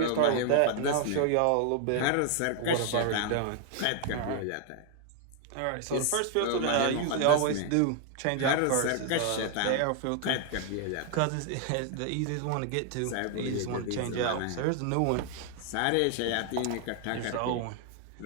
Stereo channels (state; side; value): different; both; correlation 0.00